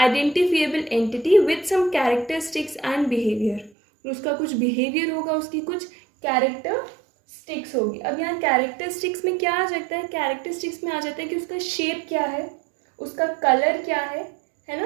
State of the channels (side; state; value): left; drops out; at 3.7 s